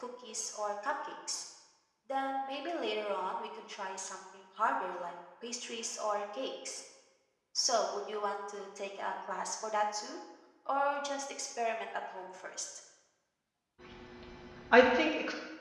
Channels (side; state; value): both; identical; correlation 1.00